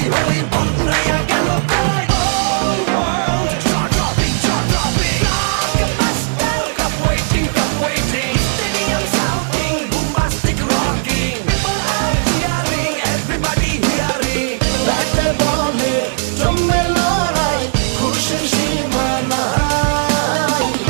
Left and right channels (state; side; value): silent; left; 69 dB below the other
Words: hoi, banguraya gelo koi. Whole world jaw-dropping. Blockbuster, cup waiting. Stadium shouting, bombastic rocking. People are cheering, everybody hearing. ব্যাটে বলে জমে লড়াই, খুশির সীমা নাই।